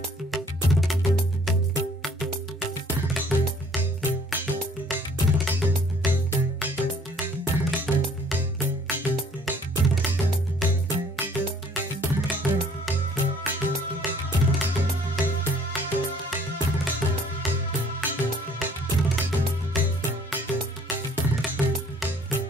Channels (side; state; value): both; normal; correlation 0.58